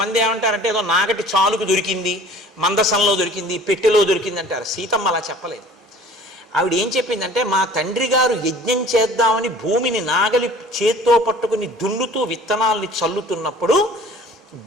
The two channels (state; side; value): normal; both; correlation 0.47